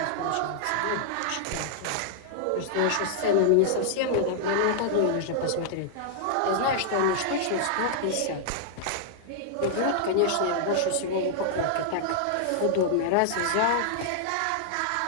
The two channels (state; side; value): different; both; correlation -0.01